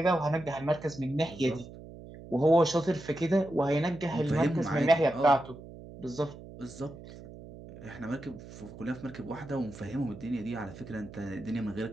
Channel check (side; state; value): right; noise; hum, 15 dB below the sound